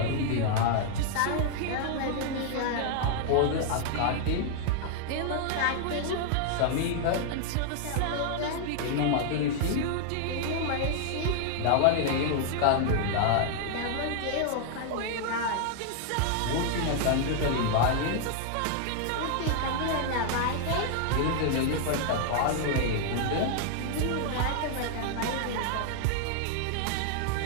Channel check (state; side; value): different; both; correlation 0.00